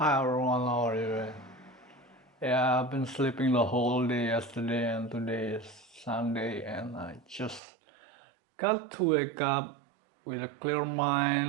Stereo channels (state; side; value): drops out; left; at 7.6 s